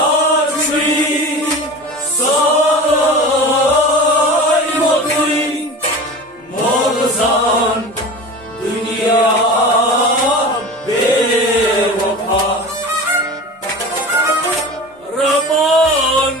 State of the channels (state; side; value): normal; both; correlation 0.34